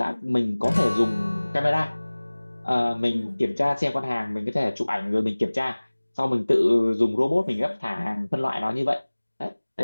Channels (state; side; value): inverted; both; correlation -1.00